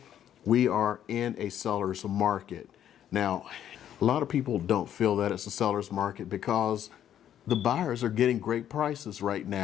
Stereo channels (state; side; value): quieter; right; 10.4 dB